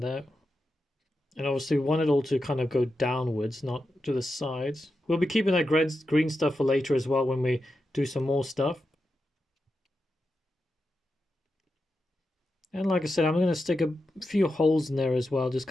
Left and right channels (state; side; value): normal; both; correlation 0.89